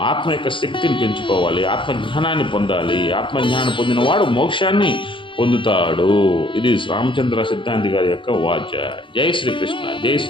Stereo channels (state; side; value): late; right; 0.24 ms